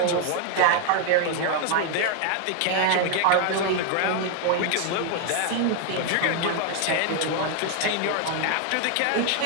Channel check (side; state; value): both; different; correlation 0.00